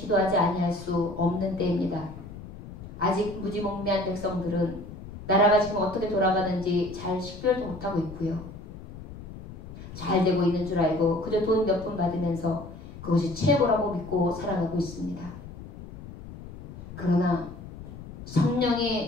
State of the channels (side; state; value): left; noise; rumble, 14 dB below the sound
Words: 아니할 수 없는 때입니다. 아직 무지몽매한 백성들은 나라가 지금 어떻게 돌아가는지 잘 식별도 못하고 있고요. 잘 되고 있는 줄 알고 그저 돈 몇 푼 받으면서 그것이 최고라고 믿고 살아가고 있습니다. 그러나